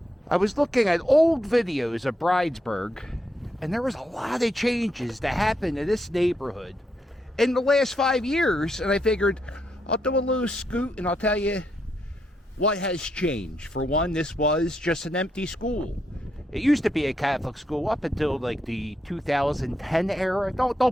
I was looking at old videos of Bridesburg, and there was a lot of changes that happened in this neighborhood in the last 5 years. And I figured I'll do a little scoot and I'll tell you what has changed. For one, this was just an empty school. It used to be a Catholic school up until like the 2010 era.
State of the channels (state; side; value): normal; both; correlation 0.80